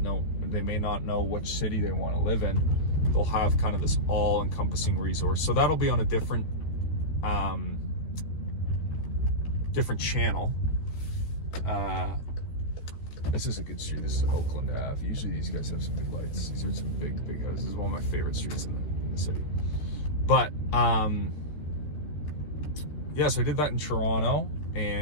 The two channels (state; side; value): late; right; 13 ms